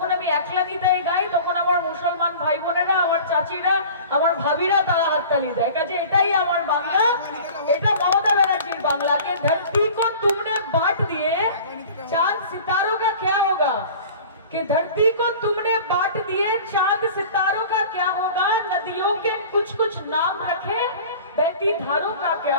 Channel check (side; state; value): both; inverted; correlation -0.41